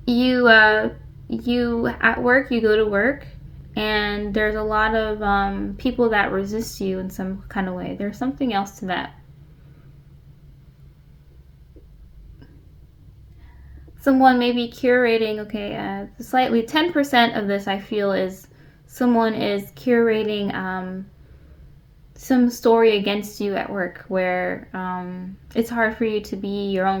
you you at work, you go to work, and there's a lot of people that resist you in some kind of way. There's something else to that. Someone may be curating, okay, slightly 10% of this I feel is someone is curating some story against you at work where it's hard for you to be your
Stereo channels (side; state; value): both; identical; correlation 1.00